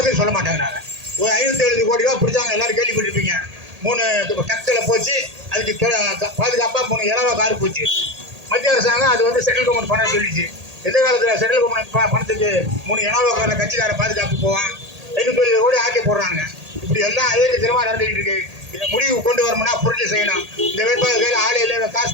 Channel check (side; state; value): left; late; 1.8 ms